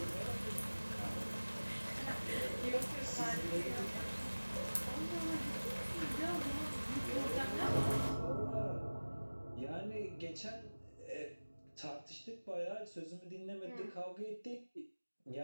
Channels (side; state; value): both; inverted; correlation -1.00